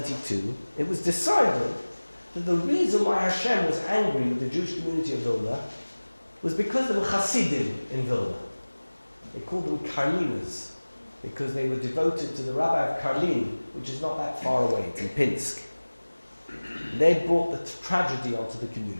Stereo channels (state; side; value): inverted; both; correlation -1.00